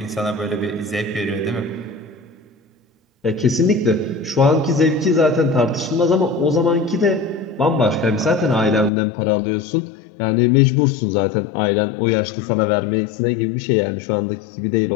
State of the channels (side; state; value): right; drops out; at 8.9 s